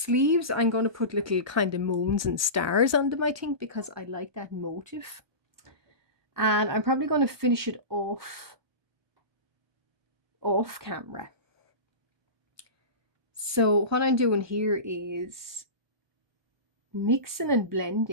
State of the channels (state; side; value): late; left; 1.2 ms